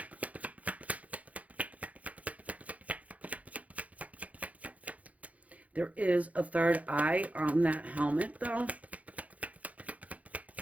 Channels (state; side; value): late; left; 0.069 ms